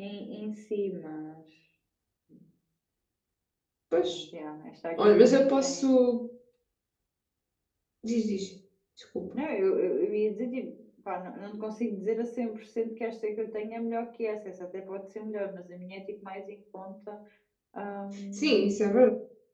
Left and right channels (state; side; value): identical; both; correlation 1.00